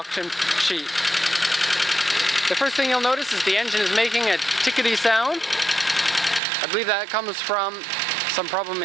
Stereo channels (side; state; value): left; drops out; at 6.4 s